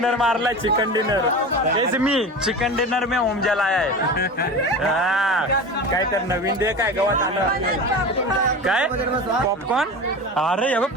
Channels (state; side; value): normal; both; correlation 0.30